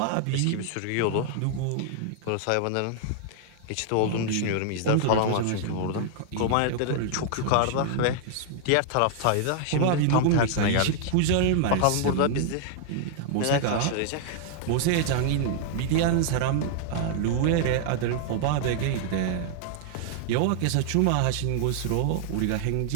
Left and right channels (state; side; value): different; both; correlation 0.00